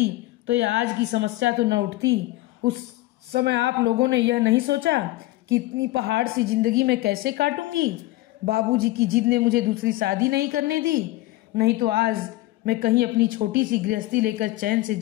तो ये आज की समस्या तो न उठती। उस समय आप लोगों ने यह नहीं सोचा कि इतनी पहाड़ सी जिंदगी में कैसे काटूंगी। बाबूजी की जिद ने मुझे दूसरी शादी नहीं करने दी, नहीं तो आज मैं कहीं अपनी छोटी सी गृहस्थी लेकर चैन से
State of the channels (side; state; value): right; quieter; 18.1 dB